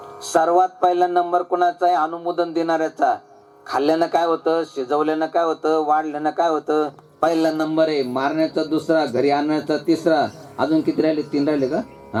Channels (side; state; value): both; identical; correlation 1.00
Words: सर्वात पहिला नंबर कोणाचा आहे? अनुमोदन देणाऱ्याचा. खाल्ल्यानं काय होतं, शिजवल्यानं काय होतं, वाढल्यानं काय होतं? पहिला नंबर आहे. मारण्याचा दुसरा, घरी आणण्याचा तिसरा. अजून किती राहिले? 3 राहिले का?